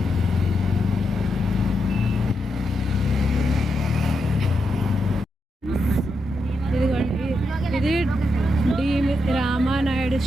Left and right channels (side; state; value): both; normal; correlation 0.84